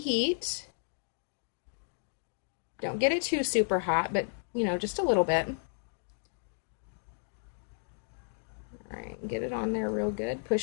Don't get it too super hot, but just a little bit. All right, get it on there real good.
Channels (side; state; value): right; silent; digital silence